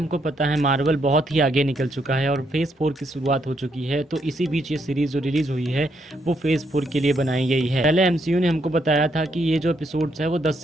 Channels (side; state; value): both; normal; correlation 0.76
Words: पता है, मार्वल बहुत ही आगे निकल चुका है और फेज़ 4 की शुरुआत हो चुकी है। तो इसी बीच ये सीरीज़ जो रिलीज़ हुई है वो फेज़ 4 के लिए बनाई गई है। पहले एमसीयू ने हमको बताया था कि ये जो एपिसोड्स है वो 10